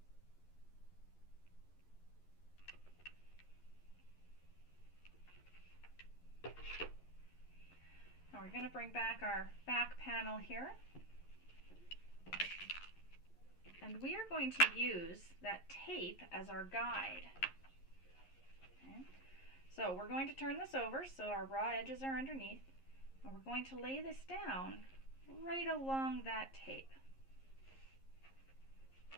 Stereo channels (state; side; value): late; right; 11 ms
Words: Now we're going to bring back our back panel here. And we are going to use that tape as our guide. Okay. So we're going to turn this over so our raw edges are underneath. And we're going to lay this down right along that tape.